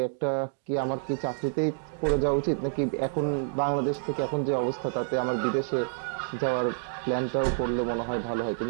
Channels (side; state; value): left; silent; digital silence